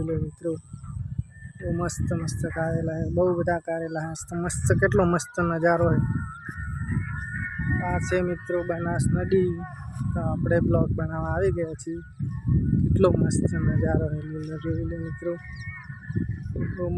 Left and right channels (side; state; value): both; identical; correlation 1.00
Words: લો મિત્રો। બહુ મસ્ત મસ્ત કારેલા, બહુ બધા કારેલા મસ્ત, કેટલો મસ્ત નજારો હોય। આ છે મિત્રો બનાસ નદી। તો આપણે બ્લોગ બનાવવા આવી ગયા છીએ। કેટલો મસ્ત નજારો હોય, જોઈ લો મિત્રો। બહુ